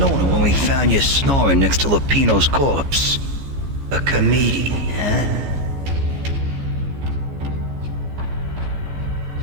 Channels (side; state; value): left; late; 15 ms